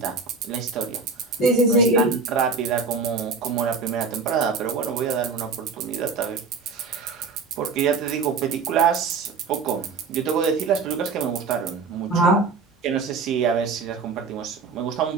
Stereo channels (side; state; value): left; quieter; 4.6 dB